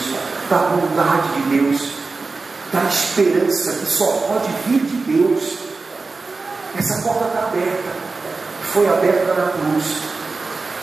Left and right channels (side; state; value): left; quieter; 3.9 dB